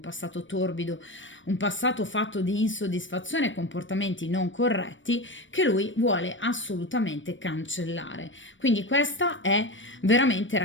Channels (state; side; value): late; right; 0.56 ms